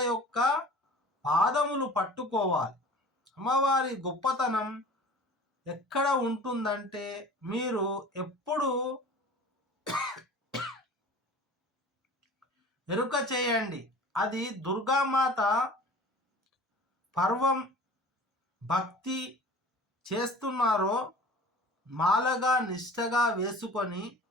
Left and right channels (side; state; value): both; normal; correlation 0.43